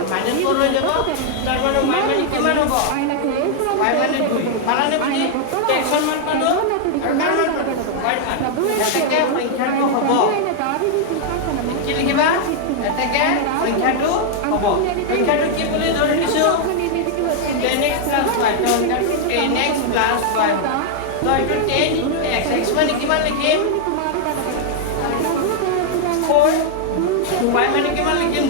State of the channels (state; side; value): different; both; correlation 0.00